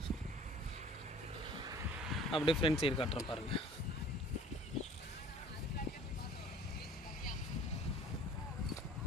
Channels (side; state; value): both; normal; correlation 0.49